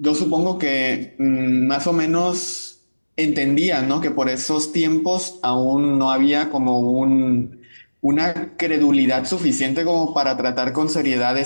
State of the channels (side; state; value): both; inverted; correlation -1.00